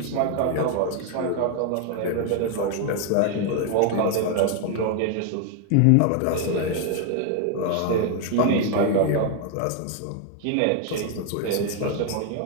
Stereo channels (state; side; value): different; both; correlation 0.01